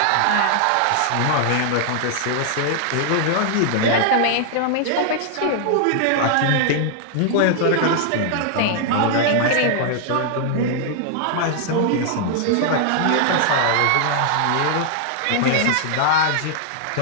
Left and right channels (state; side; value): different; both; correlation 0.00